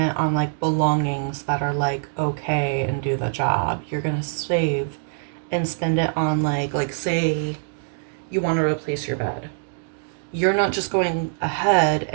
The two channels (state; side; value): silent; left; digital silence